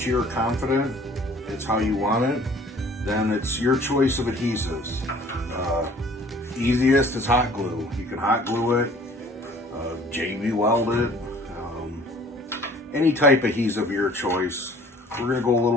you're confident it's how you want it, then it's your choice of adhesives. Easiest is hot glue. You can hot glue it, JB weld it, any type of adhesive of your choice. We're gonna go a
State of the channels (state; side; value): normal; both; correlation 0.52